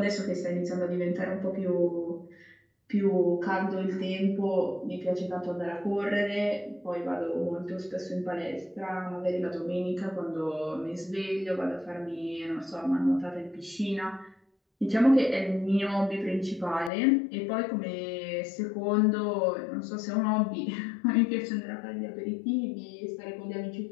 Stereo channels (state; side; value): drops out; right; at 16.9 s